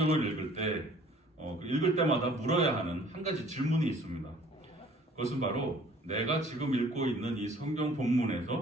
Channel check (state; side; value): normal; both; correlation 0.53